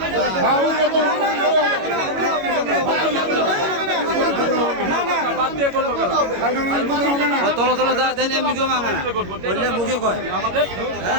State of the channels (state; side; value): late; left; 22 ms